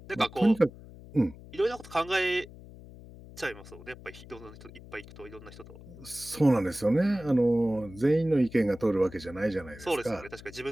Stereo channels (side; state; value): left; noise; hum, 18 dB below the sound